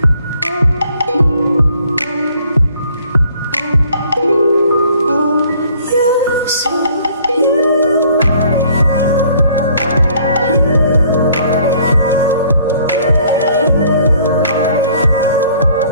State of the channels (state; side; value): inverted; both; correlation -0.58